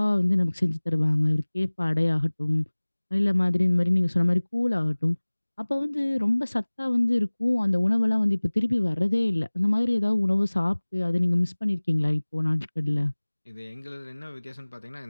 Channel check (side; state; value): both; inverted; correlation -1.00